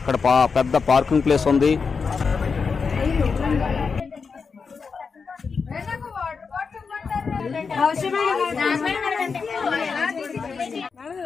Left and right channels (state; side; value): quieter; right; 5.3 dB